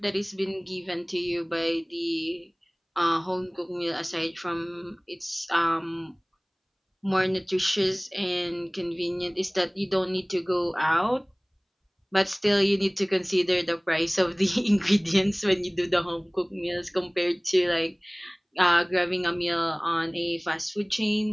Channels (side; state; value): both; identical; correlation 1.00